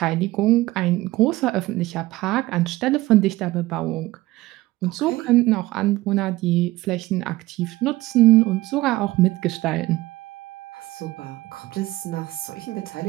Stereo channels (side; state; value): left; quieter; 18.6 dB